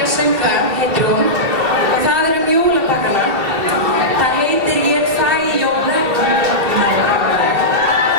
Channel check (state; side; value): late; left; 2.7 ms